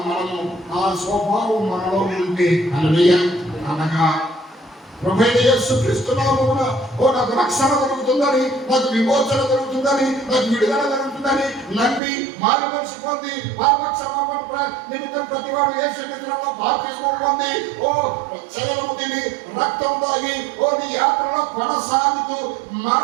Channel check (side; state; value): left; drops out; at 12.0 s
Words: మనము, ఆ స్వభావం మనలో ఉంటే హల్లెలూయా. అనగా ప్రభువైన యేసుక్రీస్తు నామమున నాకు రక్షణ దొరుకుతుందని, నాకు విమోచన దొరుకుతుందని, నాకు విడుదల దొరుకుతుందని నమ్మి మారు మనసు పొంది పాపక్షమాపణ నిమిత్తం ప్రతివాడు యేసుక్రీస్తులో బాప్తిస్మం పొంది శరీరము తిని రక్తం తాగి నీ యాత్రలో కొనసాగుతూ